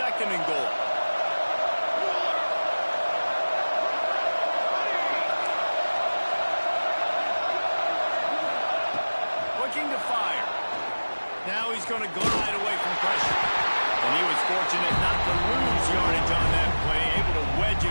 and goal? Looking to fire. Now he's going to glide away from pressure. And he was fortunate not to lose yardage on that play, able to wedge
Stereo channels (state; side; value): inverted; both; correlation -1.00